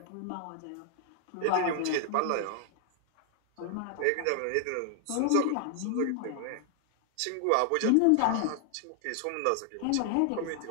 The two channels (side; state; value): both; different; correlation 0.00